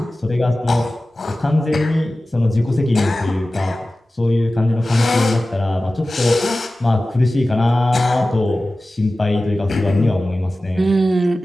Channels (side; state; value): both; normal; correlation 0.96